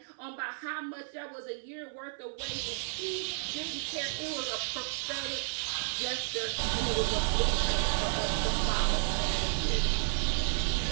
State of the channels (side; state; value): left; silent; 56 dB below the other